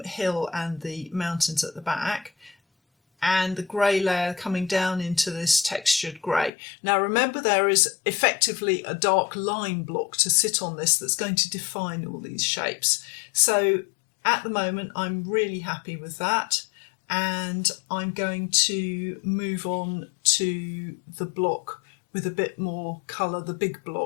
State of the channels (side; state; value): right; drops out; at 6.5 s